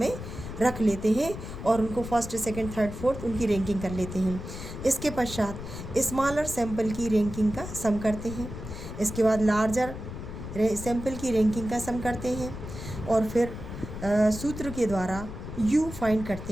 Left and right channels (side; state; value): left; noise; rumble, 9 dB below the sound